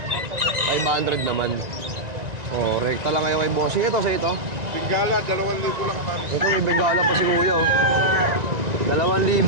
naman. Oh, rekta lang kayo kay bossing. Ito sa ito. Bingala, 2,000 lang. Ito may bengala pa si Kuya, oh.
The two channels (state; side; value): late; left; 1.9 ms